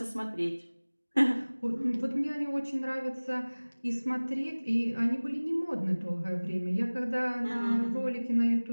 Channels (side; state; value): both; inverted; correlation -1.00